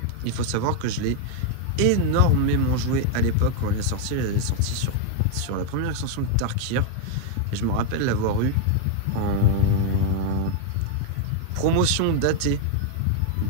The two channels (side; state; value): both; different; correlation 0.00